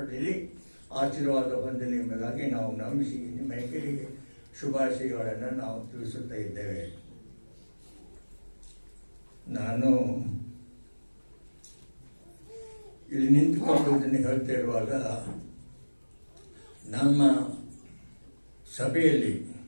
ಆಶೀರ್ವಾದ ಹೊಂದಲಿ ಎಂಬುದಾಗಿ ನಾವು ನಂಬಿಸಿ ನಿಮ್ಮೆಲ್ಲರಿಗೆ ಶುಭಾಶಯಗಳನ್ನು ನಾವು ತಿಳಿಸುತ್ತಾ ಇದ್ದೇವೆ. ನಾನು ಇಲ್ಲಿ ನಿಂತುಕೊಂಡು ಇದನ್ನು ಹೇಳ್ತಾ ಇರುವಾಗ ನಮ್ಮ ಸಭೆಯಲ್ಲಿ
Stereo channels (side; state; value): both; inverted; correlation -1.00